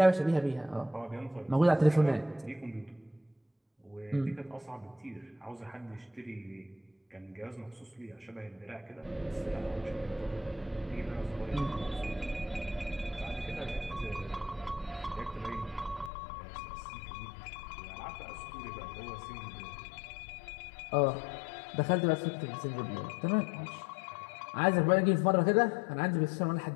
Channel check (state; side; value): drops out; right; at 16.1 s